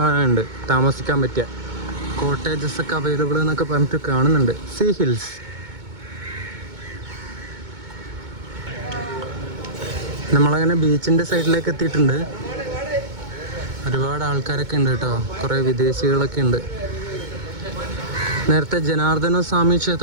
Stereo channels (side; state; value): left; late; 2.2 ms